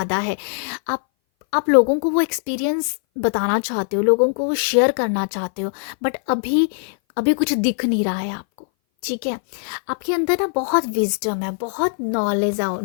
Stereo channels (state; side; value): silent; right; 60 dB below the other